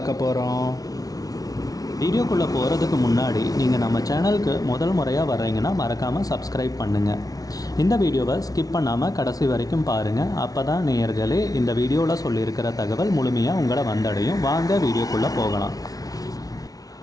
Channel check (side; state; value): right; late; 0.18 ms